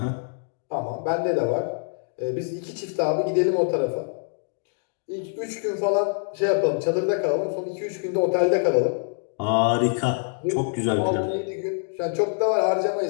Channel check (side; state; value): right; silent; 62 dB below the other